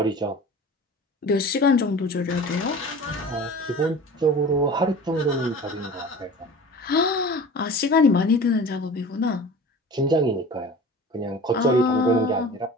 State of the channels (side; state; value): both; normal; correlation 0.39